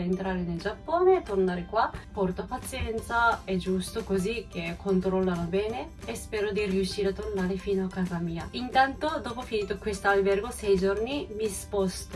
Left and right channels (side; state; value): both; identical; correlation 1.00